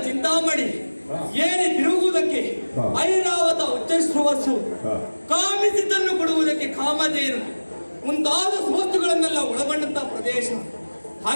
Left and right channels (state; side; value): inverted; both; correlation -1.00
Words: ಚಿಂತಾಮಣಿ ಏರಿ ತಿರುಗುವುದಕ್ಕೆ ಐರಾವತ ಉಚ್ಚಶ್ರವಸ್ಸು, ಕಾಮಿಸಿದ್ದನ್ನು ಕೊಡುವುದಕ್ಕೆ ಕಾಮಧೇನು ಮುಂತಾದ ವಸ್ತುಗಳನ್ನೆಲ್ಲ ಒಳಗೊಂಡಂತಹ ಪ್ರದೇಶ.